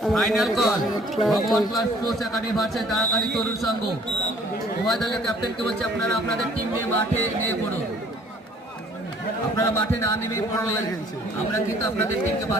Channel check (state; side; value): normal; both; correlation 0.56